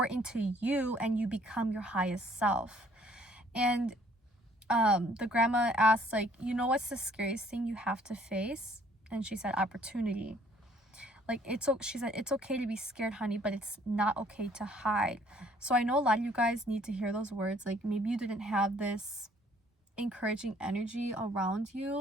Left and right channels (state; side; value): normal; both; correlation 0.60